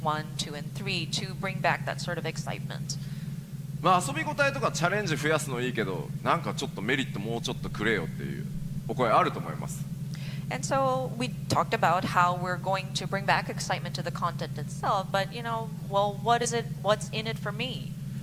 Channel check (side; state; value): both; identical; correlation 1.00